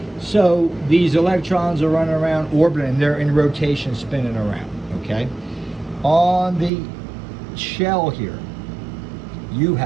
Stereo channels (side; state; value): left; drops out; at 6.7 s